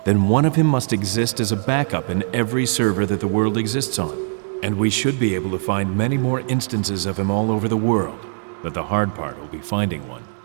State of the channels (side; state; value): left; silent; digital silence